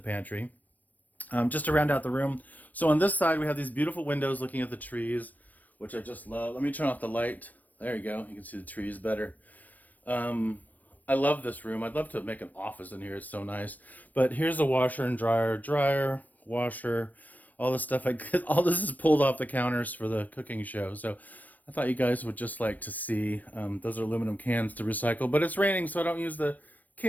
Just to round out the room. So on this side we have these beautiful windows looking at the trees, which I just love. Let me turn off the light. There you go. You can see the trees better. I love this room. I'd love to make an office in here. It's so nice. But here's a washer and dryer, washer, all this stuff. All this is pulled off the counters for the cooking show. So I thought you guys would just like to see. Those are aluminum cans to recycle, but it's raining, so I don't use the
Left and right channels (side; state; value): right; late; 0.081 ms